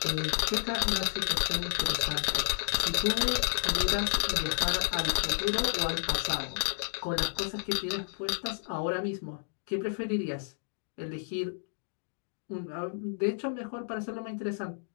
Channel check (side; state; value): right; silent; digital silence